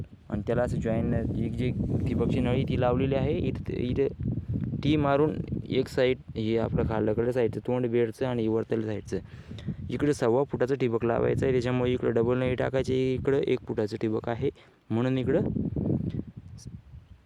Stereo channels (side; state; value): both; identical; correlation 1.00